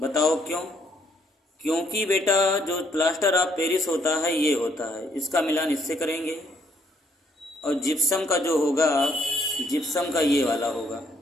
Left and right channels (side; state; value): both; normal; correlation 0.69